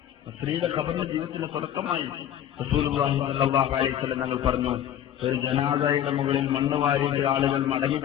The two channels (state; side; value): quieter; right; 10.7 dB